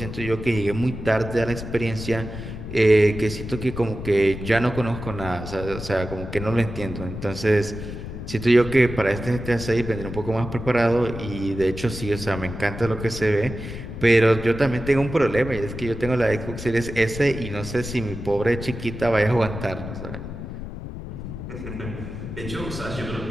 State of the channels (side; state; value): left; noise; rumble, 9 dB below the sound